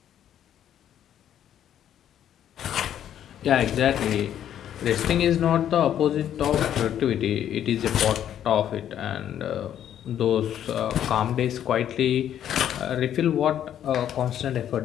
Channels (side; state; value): right; quieter; 10.4 dB